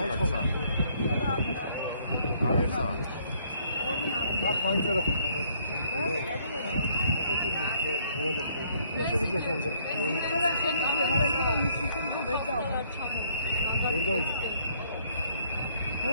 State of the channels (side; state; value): both; inverted; correlation -0.65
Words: აგეცა. აქ მაინც რა ხდება?